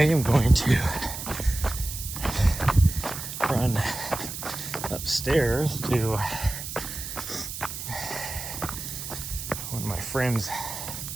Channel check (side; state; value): right; noise; hiss, 8 dB below the sound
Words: going to run upstairs to one of my friends'